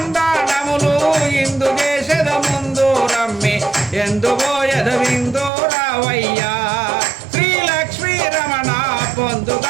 ఇందు దేశద ముందు రమ్మి ఎందుబోయద విందు రావయ్యా శ్రీ లక్ష్మీ రమణ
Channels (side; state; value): left; drops out; at 5.5 s